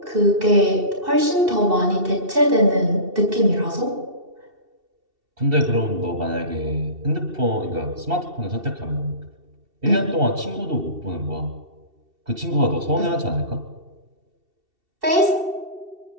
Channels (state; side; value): late; left; 2.7 ms